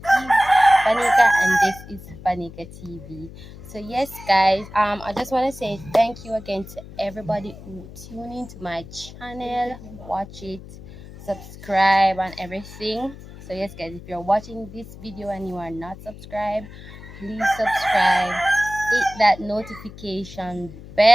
and this is Fanika TV. So yes, guys, I just want to say thank you again to everybody who tune into my channel, watch it, subscribe, and everything. So yes, guys, if you're watching this video and you are not subscribed, please subscribe, hit that notification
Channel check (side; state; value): left; noise; hum, 16 dB below the sound